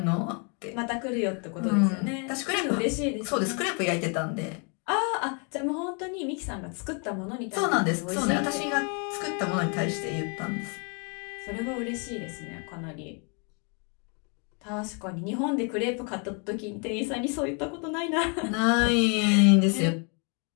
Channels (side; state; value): right; quieter; 36.3 dB